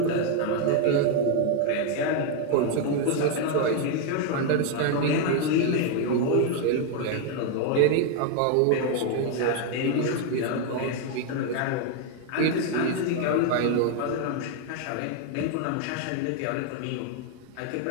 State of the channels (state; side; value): different; both; correlation 0.01